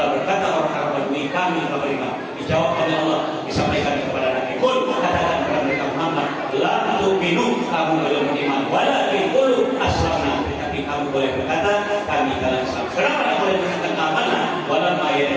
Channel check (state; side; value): identical; both; correlation 1.00